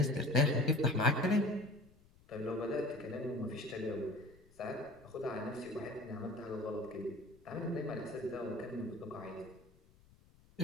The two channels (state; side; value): noise; left; rumble, 27 dB below the sound